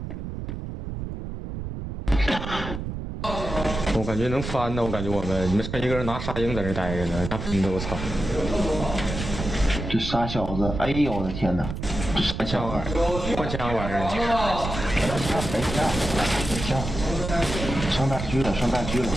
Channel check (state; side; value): noise; right; rumble, 6 dB below the sound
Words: 我感觉能翻呢，我感觉你们剩一个人拿沙鹰在这待着呢，那喷的我操！这傻小子，哎呦我的天哪！换枪玩意儿，换枪玩意儿。上大狙了，上大狙了，